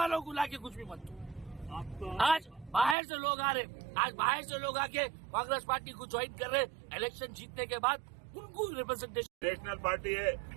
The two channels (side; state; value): left; drops out; at 3.0 s